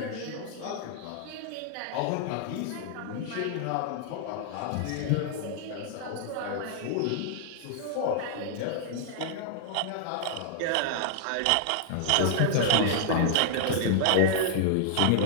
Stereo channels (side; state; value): both; different; correlation -0.01